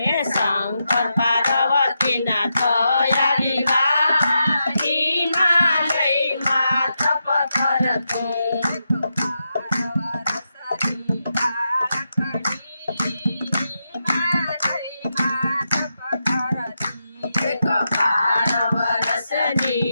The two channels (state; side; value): inverted; both; correlation -0.86